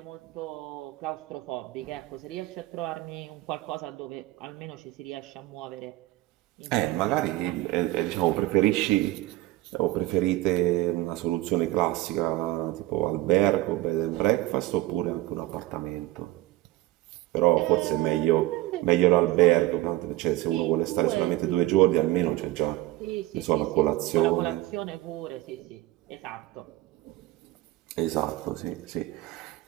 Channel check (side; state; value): left; quieter; 17.2 dB